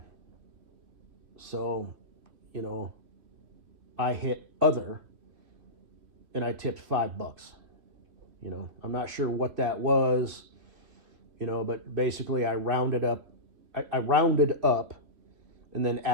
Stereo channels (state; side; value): late; left; 2.9 ms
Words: So, I hit other, and I tipped $5. I'm not sure what that was, but basically I rounded up, and then